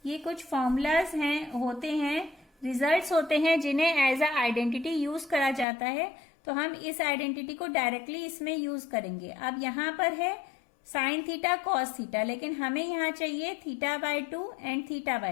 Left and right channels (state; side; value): drops out; right; at 5.7 s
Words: ये कुछ फॉर्मूलाज हैं होते हैं, रिजल्ट्स होते हैं जिन्हें एज अ आइडेंटिटी यूज करा जाता है, तो हम इस आइडेंटिटी को डायरेक्टली इसमें यूज करेंगे। अब यहाँ पर है साइन थीटा कॉस थीटा, लेकिन हमें यहाँ चाहिए theta by 2 and theta